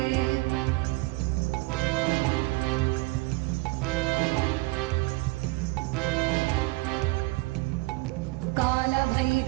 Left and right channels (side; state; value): left; quieter; 23.2 dB